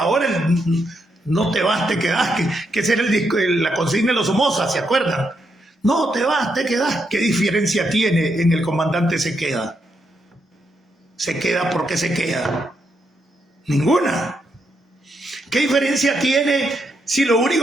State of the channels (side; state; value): both; normal; correlation 0.80